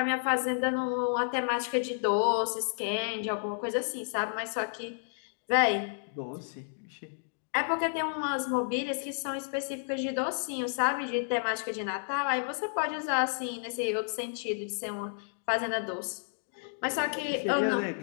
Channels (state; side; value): silent; right; digital silence